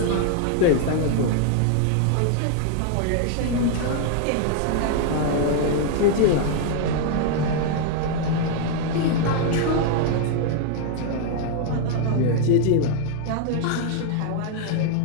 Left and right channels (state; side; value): different; both; correlation 0.00